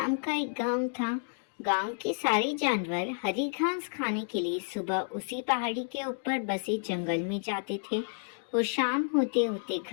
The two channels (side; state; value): right; silent; digital silence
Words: का एक गांव था। गांव के सारे जानवर हरी घास खाने के लिए सुबह उसी पहाड़ी के ऊपर बसे जंगल में जाते थे और शाम होते होते